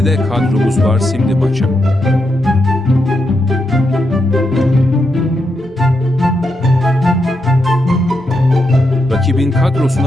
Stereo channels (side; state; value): both; normal; correlation 0.83